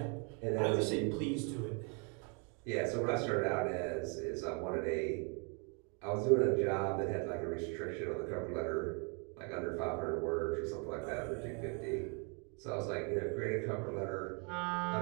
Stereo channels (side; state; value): left; quieter; 36.5 dB